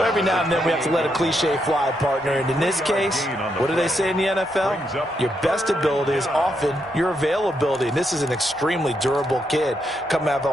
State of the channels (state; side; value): normal; both; correlation 0.80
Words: every now and then we have to let a cliche fly, partner. And in this case, what do they say in the NFL? Your best ability is often your availability. And this is an extremely durable kid coming out of